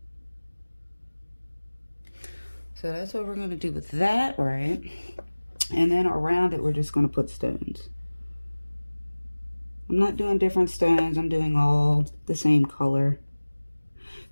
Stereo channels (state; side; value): inverted; both; correlation -1.00